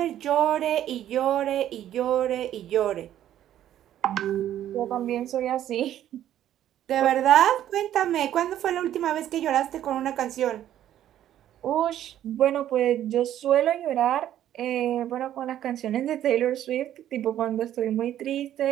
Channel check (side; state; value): left; quieter; 11.7 dB